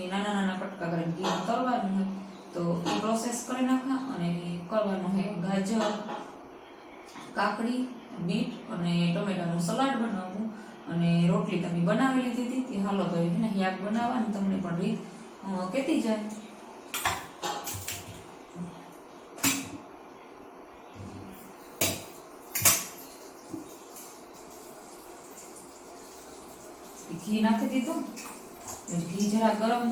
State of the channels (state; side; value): identical; both; correlation 1.00